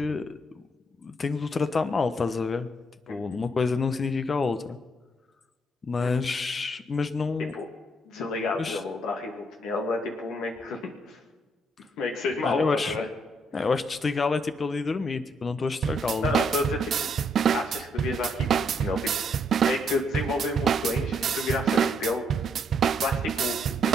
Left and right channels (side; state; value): both; normal; correlation 0.72